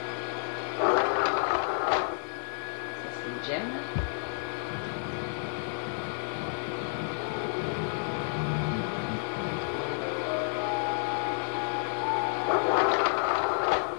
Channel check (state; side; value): silent; right; digital silence